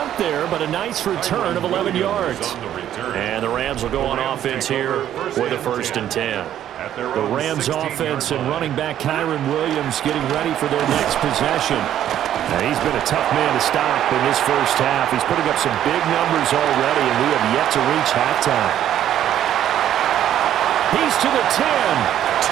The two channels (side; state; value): left; quieter; 11.1 dB